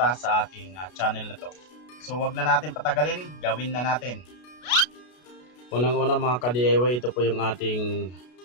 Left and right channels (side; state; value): right; late; 33 ms